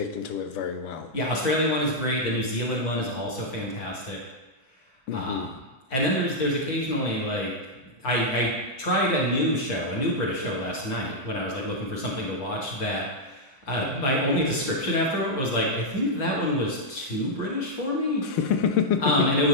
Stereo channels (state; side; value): late; right; 7.3 ms